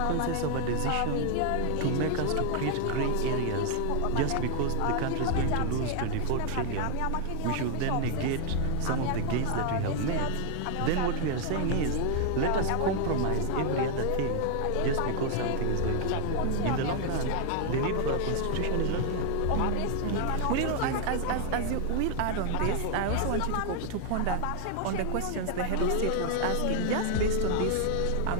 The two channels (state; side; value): different; both; correlation 0.00